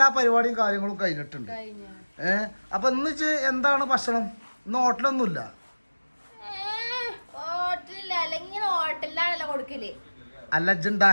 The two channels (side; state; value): both; inverted; correlation -1.00